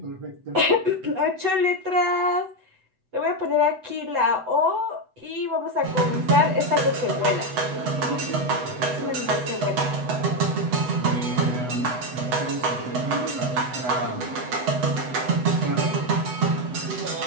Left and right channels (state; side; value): late; left; 8.0 ms